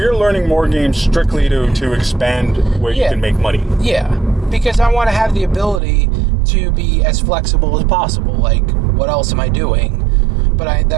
learning more games strictly to expand where you can make money. Yeah, because I want to have the ability to be as flexible as possible. What else am I doing? But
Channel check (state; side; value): drops out; left; at 5.8 s